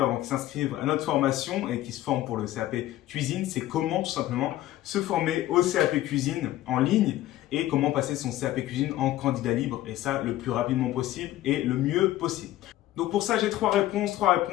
avant qu'ils s'inscrivent à notre formation et qui se forment pour le CAP Cuisine. C'est comment tout simplement se former au CAP Cuisine en ligne et comment passer son CAP Cuisine en candidat libre et ça le plus rapidement possible et le mieux possible. Donc pour ça, j'ai trois réponses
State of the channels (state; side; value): quieter; right; 14.8 dB